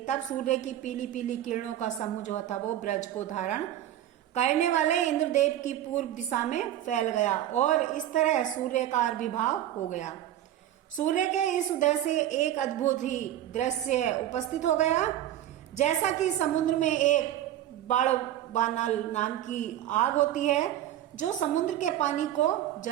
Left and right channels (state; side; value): quieter; left; 12.3 dB